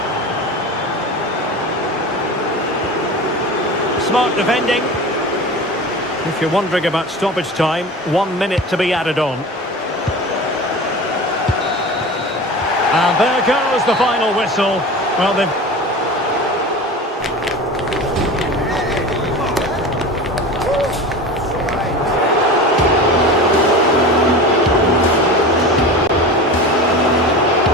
Smart defending. If you're wondering about stoppage time, 1 minute to be added on. And there goes the final whistle. Well, they've...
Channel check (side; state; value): both; normal; correlation 0.32